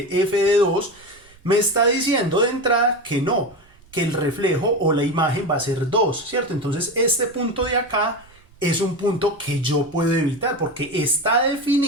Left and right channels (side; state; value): right; noise; rumble, 28 dB below the sound